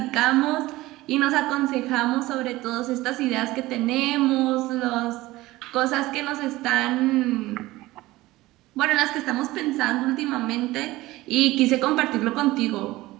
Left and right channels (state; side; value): quieter; left; 18.4 dB